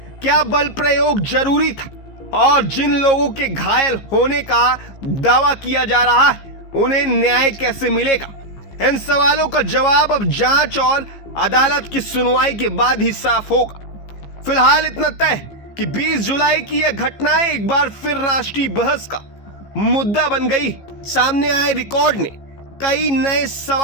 क्या बल प्रयोग जरूरी था? और जिन लोगों के घायल होने का दावा किया जा रहा है उन्हें न्याय कैसे मिलेगा? इन सवालों का जवाब अब जांच और अदालत की सुनवाई के बाद ही साफ होगा। फिलहाल इतना तय कि 20 जुलाई की यह घटनाएं एक बार फिर राष्ट्रीय बहस का मुद्दा बन गई। सामने आए रिकॉर्ड ने कई नए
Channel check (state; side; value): late; right; 15 ms